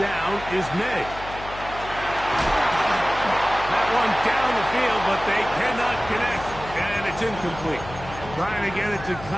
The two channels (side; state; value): left; noise; hum, 13 dB below the sound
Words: is May. That one down the field, but they cannot connect, and it's incomplete. Trying to get it to